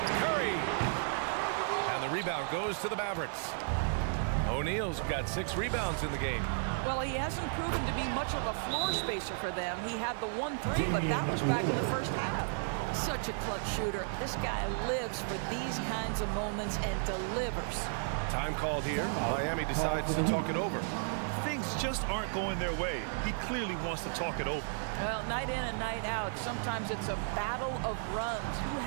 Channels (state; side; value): silent; left; digital silence